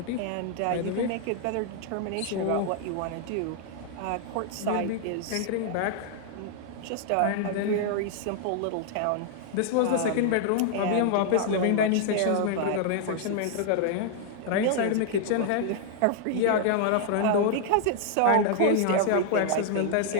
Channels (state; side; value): different; both; correlation -0.01